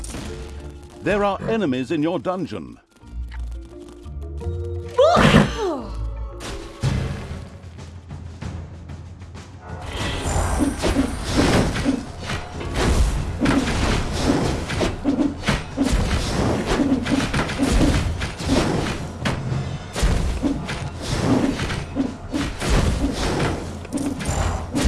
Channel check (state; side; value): identical; both; correlation 1.00